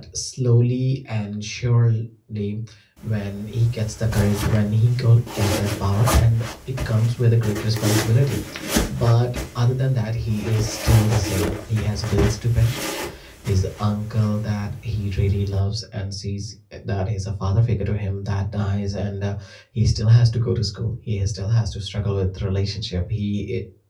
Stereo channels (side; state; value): both; identical; correlation 1.00